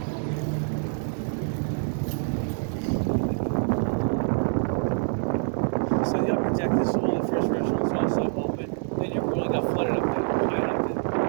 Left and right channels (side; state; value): left; silent; 61 dB below the other